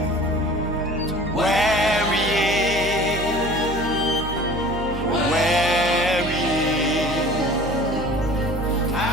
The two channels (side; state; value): right; noise; hum, 8 dB below the sound